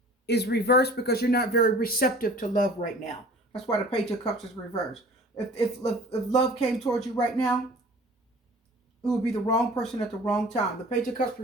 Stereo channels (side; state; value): both; normal; correlation 0.46